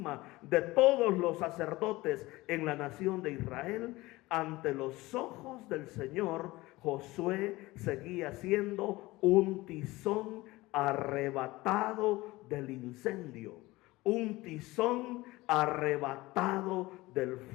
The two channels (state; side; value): quieter; right; 20.0 dB